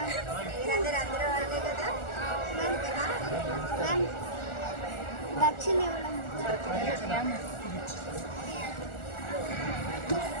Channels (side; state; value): right; late; 1.4 ms